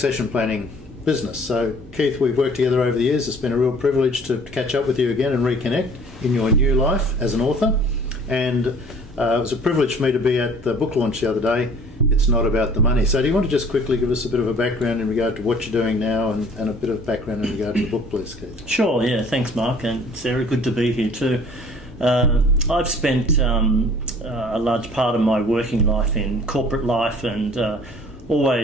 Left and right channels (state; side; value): normal; both; correlation 0.52